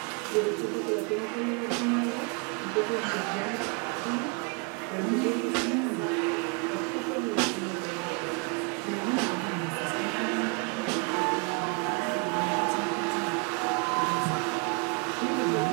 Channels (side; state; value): left; quieter; 34.0 dB